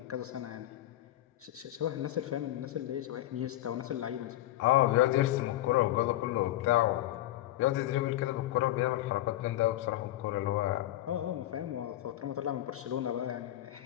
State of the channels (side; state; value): right; quieter; 14.8 dB